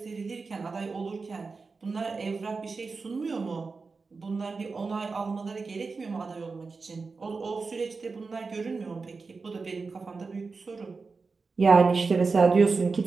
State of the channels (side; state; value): left; quieter; 4.4 dB